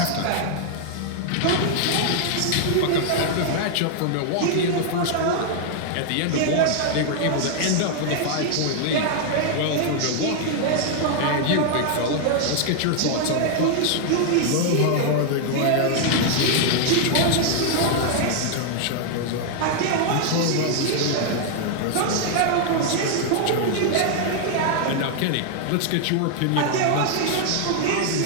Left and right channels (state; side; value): different; both; correlation 0.00